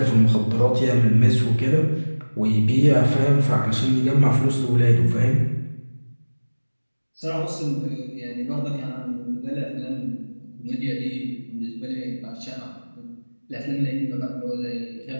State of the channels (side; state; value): both; inverted; correlation -1.00